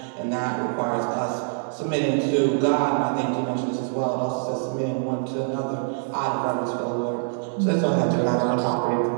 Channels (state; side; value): silent; left; digital silence